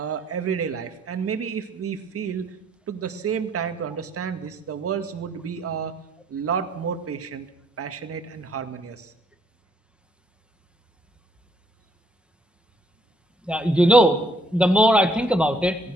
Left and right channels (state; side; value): normal; both; correlation 0.66